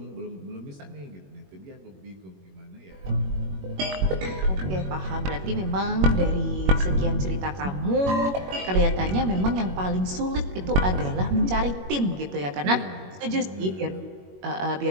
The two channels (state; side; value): late; left; 21 ms